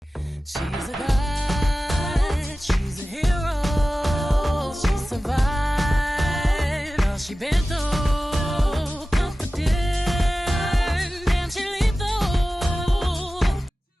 She's a god, she's a hero. She survived all she been through. Confident and she lethal.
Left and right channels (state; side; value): normal; both; correlation 0.96